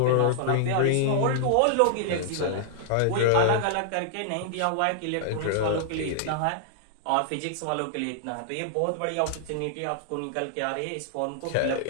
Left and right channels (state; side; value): different; both; correlation -0.01